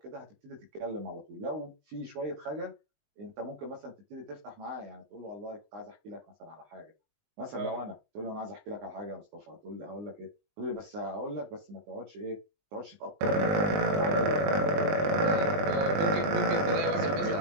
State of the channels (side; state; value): left; late; 20 ms